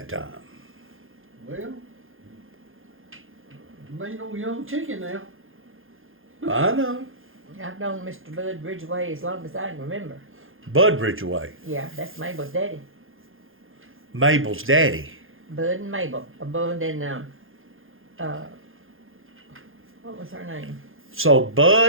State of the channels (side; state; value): left; late; 0.59 ms